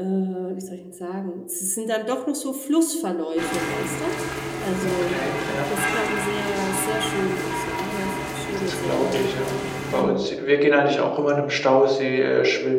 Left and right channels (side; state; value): both; identical; correlation 1.00